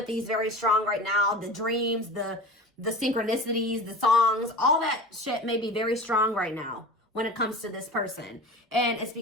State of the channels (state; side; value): normal; both; correlation 0.34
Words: is very strong right now. The dreams, the synchronicities, the songs, all that shit may be very strong right now when it comes to this person. And it's